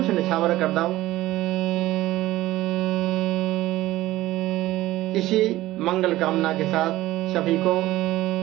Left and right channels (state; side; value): quieter; left; 16.4 dB